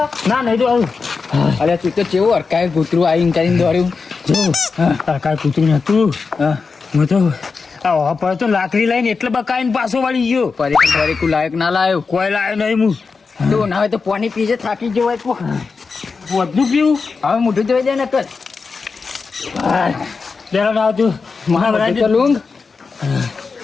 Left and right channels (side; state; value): right; quieter; 4.8 dB